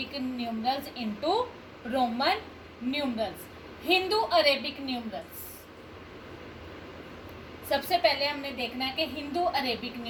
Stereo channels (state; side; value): identical; both; correlation 1.00